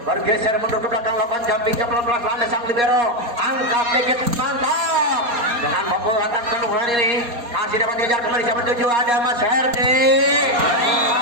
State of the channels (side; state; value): left; late; 4.2 ms